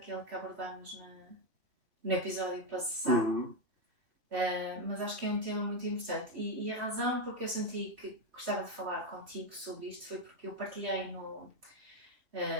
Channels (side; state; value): left; late; 3.3 ms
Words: que abordámos no episódio passado. Mas acho que é um tema muito importante. E a razão porque eu senti que gostava de falar contigo sobre isto foi porque eu partilhei